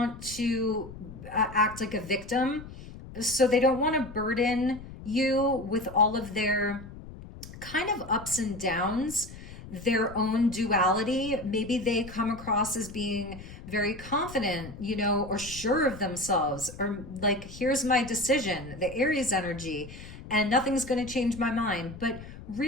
to act like a victim. So they don't want to burden you with all of their kind of ups and downs. their own duality. Maybe they come across as being very confident, you know, or sure of themselves, or like, here's my decision, the Aries energy, and nothing's going to change my mind. But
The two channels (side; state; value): left; noise; rumble, 14 dB below the sound